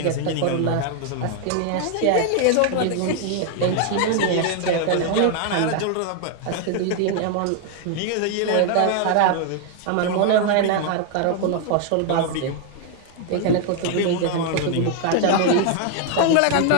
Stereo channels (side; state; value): both; different; correlation 0.00